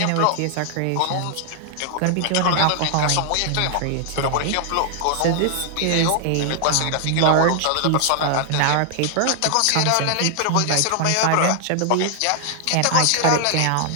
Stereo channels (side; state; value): both; different; correlation 0.00